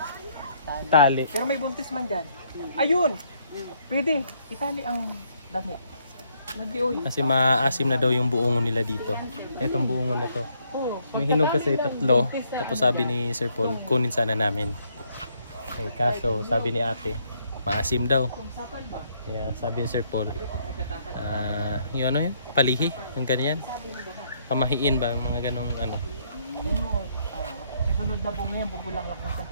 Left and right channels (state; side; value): inverted; both; correlation -0.70